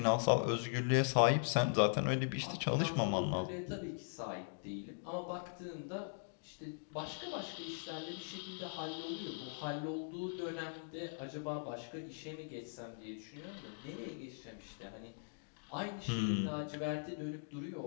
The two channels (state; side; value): silent; right; digital silence